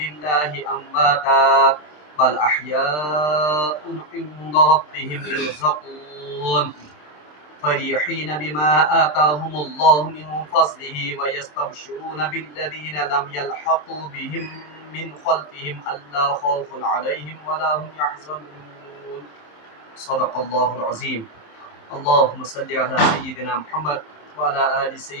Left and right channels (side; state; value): right; late; 26 ms